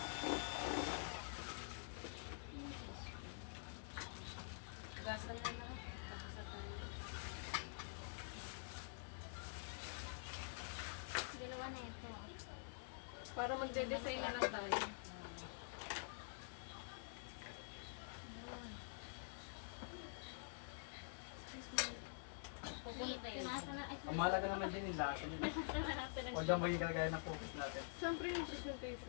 Gasal na lahat. Dalawa na ito. Para magde-design na lang tayo. Pupunta yun. Ang mahalaga naman din yung lasa niya. Huwag kang maging kagaya ng focus natin. Siyempre yung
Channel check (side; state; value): right; silent; digital silence